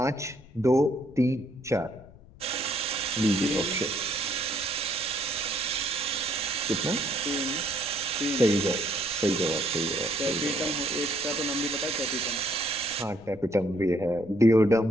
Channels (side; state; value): left; noise; rumble, 23 dB below the sound